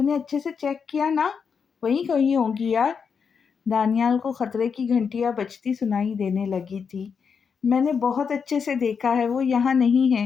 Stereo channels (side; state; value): right; quieter; 6.2 dB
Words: نے اچھے سے چیک کیا نا؟ وہیں کہیں ہوگی یار، دانیال کو خطرے کی گھنٹیاں بجتی سنائی دینے لگی تھی۔ میں نے بہت اچھے سے دیکھا ہے، وہ یہاں نہیں ہے،